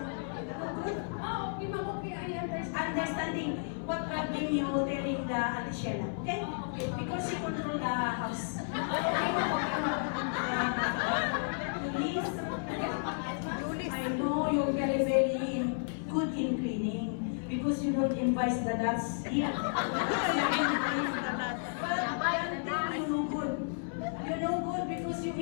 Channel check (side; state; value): right; silent; 56 dB below the other